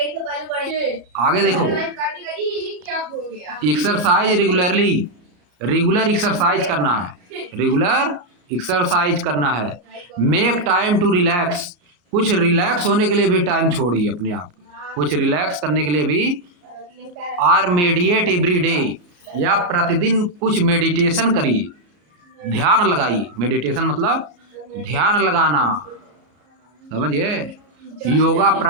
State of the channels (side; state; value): left; late; 34 ms